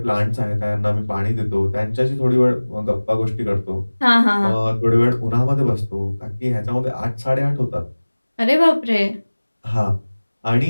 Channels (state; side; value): inverted; both; correlation -1.00